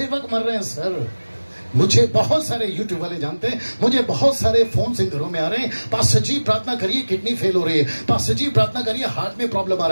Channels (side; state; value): both; inverted; correlation -1.00